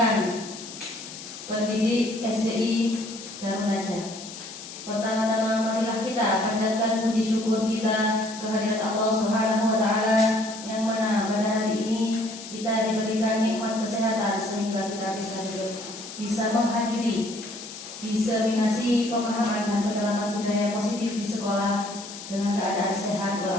pendidik SDI Darun Najah. Pertama-tama marilah kita panjatkan puji syukur kita kehadirat Allah Subhanahu wa taala yang mana pada hari ini kita diberikan nikmat kesehatan sehingga kita bisa menghadiri diseminasi pemahaman dan penerapan budaya positif di sekolah dengan keadaan sehat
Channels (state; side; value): noise; left; hiss, 12 dB below the sound